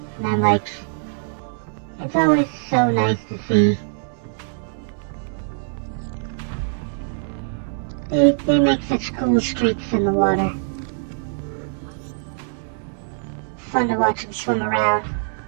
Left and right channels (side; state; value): left; silent; 64 dB below the other